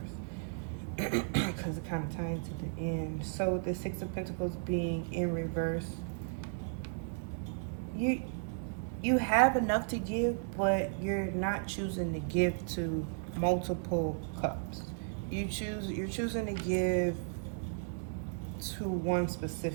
because it kind of ties to the end. So the Six of Pentacles being in reverse, you have enough to give, but you're not choosing to give to multiple cups. You're choosing to give to one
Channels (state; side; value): silent; left; digital silence